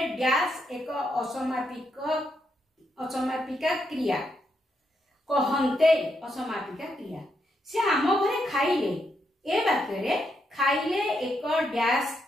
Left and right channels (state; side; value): normal; both; correlation 0.80